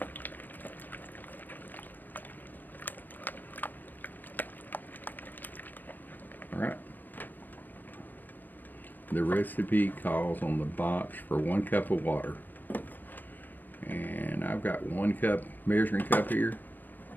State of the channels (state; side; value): late; right; 0.087 ms